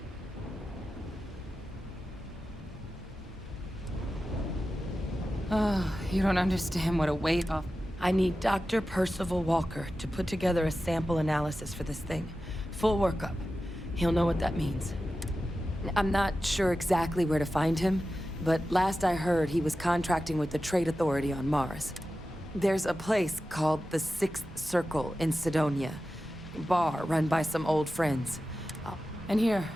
Oh, you don't understand what a weight off. I need Dr. Percival Walker to put together a sample analysis for this thing. Full workup. He'll know what that means. I'm not sure exactly where to find him, but last I heard he was contracting with the Trade Authority on Mars. There's a place called the Sixth Circle in Sidonia. Bar run by some old friends. And here,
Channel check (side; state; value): both; normal; correlation 0.93